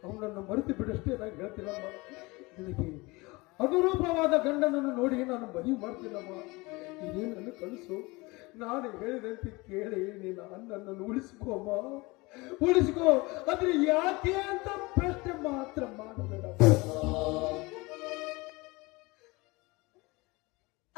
ಅವನನ್ನು ಮರೆತು ಬಿಡಷ್ಟೇ ನಾನು ಹೇಳ್ತೀನಮ್ಮ. ನಿನಗೆ ಅನುರೂಪವಾದ ಗಂಡನನ್ನು ನೋಡಿ ನಾನು ಮದುವೆ ಮಾಡ್ತೀನಮ್ಮ. ಇದೇನನ್ನು ಕಳಿಸು. ನಾನು ಹೇಳಿದಂತೆ ಕೇಳಿ ನೀನು ಅಣ್ಣನನ್ನು ಉಳಿಸ್ಕೋಮ್ಮ, ಉಳಿಸ್ಕೋ. ಆದ್ರೆ ಯಾಕೆ ಅಂತ ಪ್ರಶ್ನೆ ಮಾತ್ರ ಮಾಡಬೇಡ.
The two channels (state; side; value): quieter; right; 23.9 dB